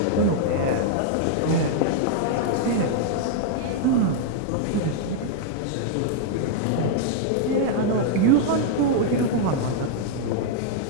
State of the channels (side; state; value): both; different; correlation -0.01